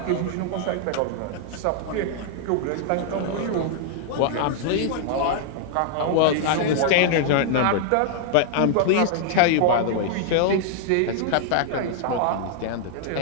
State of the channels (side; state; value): both; different; correlation -0.01